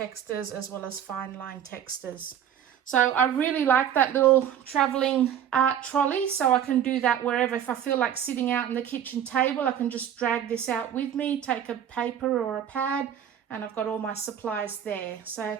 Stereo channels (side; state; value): left; quieter; 9.5 dB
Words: as well as fine line textures. So I really like that little traveling art trolley, so I can do that wherever. If I feel like sitting out in the kitchen table, I can just drag this out with me, take a paper or a pad, and I've got all my supplies there. So